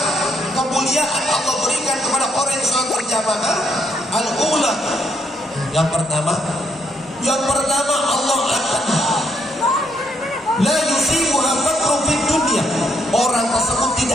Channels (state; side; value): normal; both; correlation 0.73